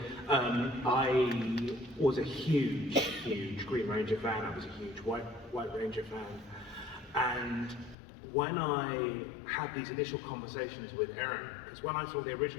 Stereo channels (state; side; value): drops out; right; at 8.0 s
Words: I was a huge Green Ranger fan. I was a huge White Ranger fan, and when I had these initial conversations with Aaron, because when I saw the